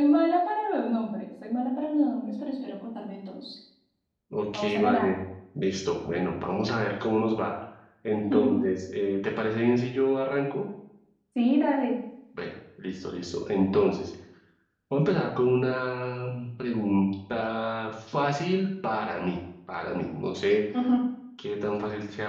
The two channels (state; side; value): identical; both; correlation 1.00